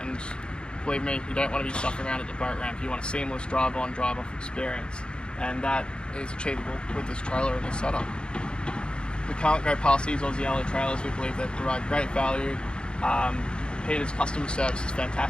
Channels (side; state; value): right; late; 0.052 ms